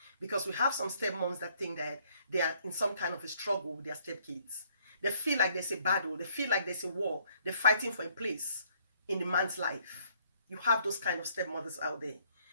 because we have some stepmoms that think that they are in some kind of a struggle with their stepkids. They feel like there's a battle, they feel like there's a war, they're fighting for a place in the man's life. You have those kind of stepmothers out there.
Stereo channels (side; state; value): both; inverted; correlation -0.65